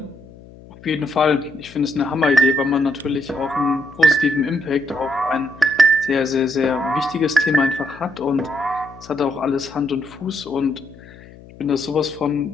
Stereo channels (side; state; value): left; noise; hum, 21 dB below the sound